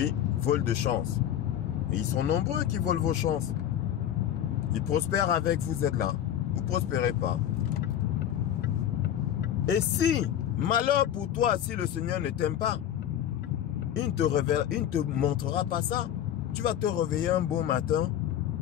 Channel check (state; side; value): quieter; right; 10.8 dB